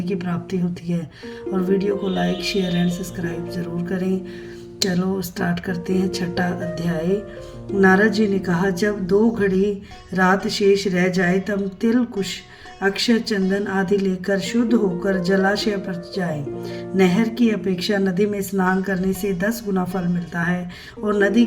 की प्राप्ति होती है। और वीडियो को लाइक शेयर एंड सब्सक्राइब ज़रूर करें। चलो स्टार्ट करते हैं छठा अध्याय। नारद जी ने कहा, जब 2 घड़ी रात शेष रह जाए तब तिल कुश अक्षय चंदन आदि लेकर शुद्ध होकर जलाशय पर जाए। नहर की अपेक्षा नदी में स्नान करने से 10 गुना फल मिलता है और नदी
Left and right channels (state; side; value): identical; both; correlation 1.00